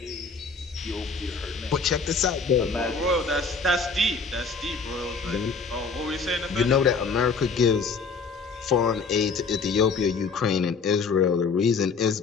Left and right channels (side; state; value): right; quieter; 4.8 dB